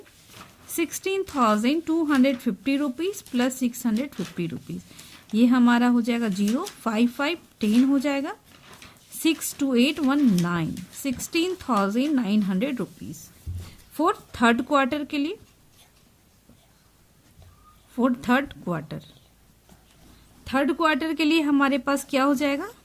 16,250 rupees plus 650 rupees. ये हमारा हो जाएगा 0 5 5 10 हो जाएगा, 6 2 8 1 9, 16,900 रुपीज फॉर थर्ड क्वार्टर के लिए। फॉर थर्ड क्वार्टर के लिए हमारे पास क्या हो जाएगा,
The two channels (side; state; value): both; identical; correlation 1.00